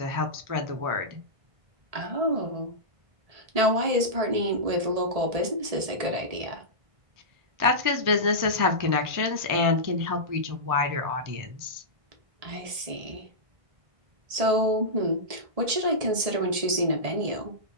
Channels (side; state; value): left; late; 1.7 ms